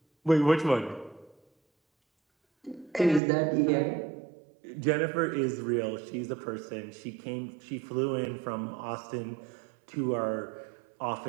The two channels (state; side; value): drops out; left; at 3.2 s